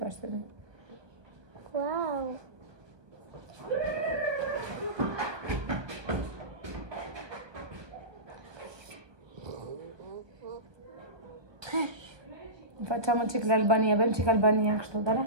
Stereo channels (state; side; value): late; left; 1.2 ms